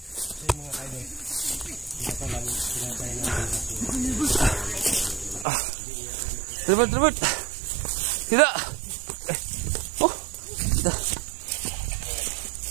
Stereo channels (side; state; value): left; drops out; at 5.5 s